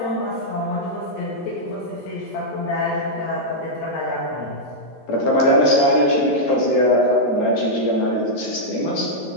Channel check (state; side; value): late; right; 11 ms